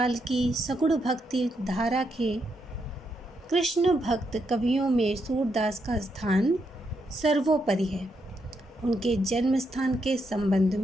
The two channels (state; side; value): normal; both; correlation 0.80